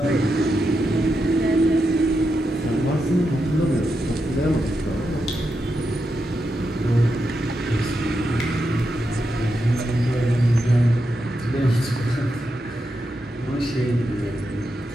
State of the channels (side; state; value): both; normal; correlation 0.86